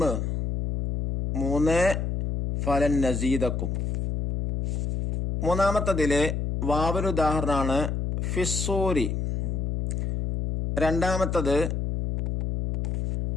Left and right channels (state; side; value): noise; left; hum, 1 dB below the sound